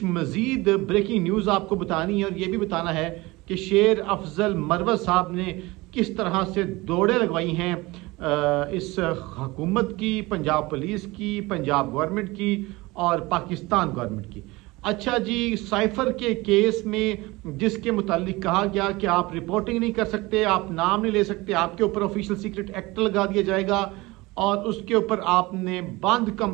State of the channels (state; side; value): quieter; left; 21.8 dB